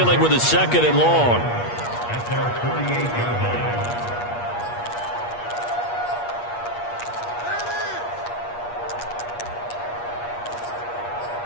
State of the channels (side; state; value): right; late; 8.4 ms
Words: with a 2nd and long.